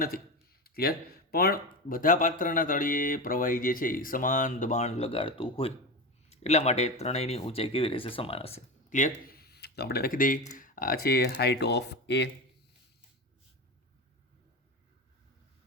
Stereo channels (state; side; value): normal; both; correlation 0.21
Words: નથી. ક્લિયર? પણ બધા પાત્રના તળિયે પ્રવાહી જે છે એ સમાન દબાણ લગાડતું હોય, એટલા માટે ત્રણેયની ઊંચાઈ કેવી રહેશે? સમાન હશે. ક્લિયર? તો આપણે લખી દઈએ, આ છે હાઇટ ઓફ એ,